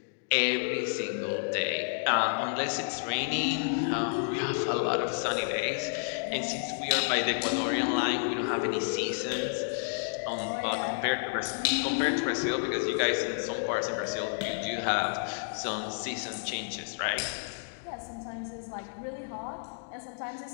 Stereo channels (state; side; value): silent; right; digital silence